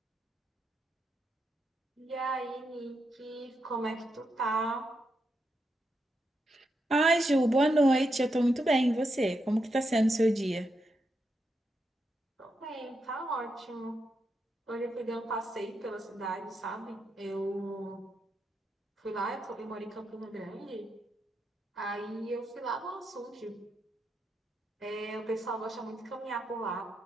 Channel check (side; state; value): both; normal; correlation 0.84